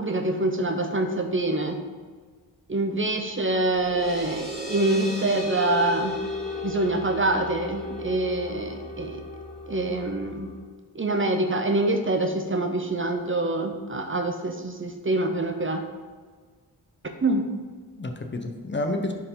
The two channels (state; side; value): normal; both; correlation 0.11